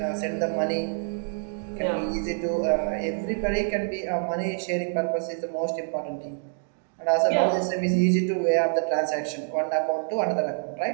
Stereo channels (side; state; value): left; silent; digital silence